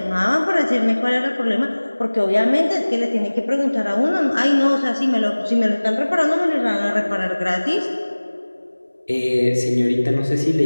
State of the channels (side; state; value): both; inverted; correlation -1.00